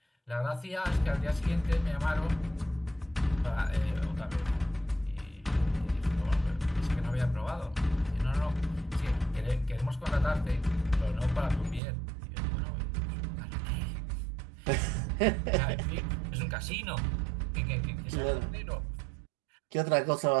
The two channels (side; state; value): left; drops out; at 11.8 s